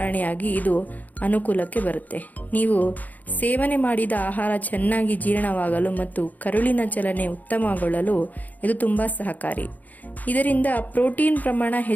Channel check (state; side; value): late; right; 0.080 ms